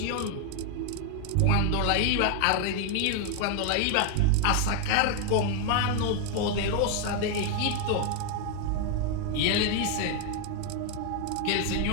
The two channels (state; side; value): different; both; correlation 0.01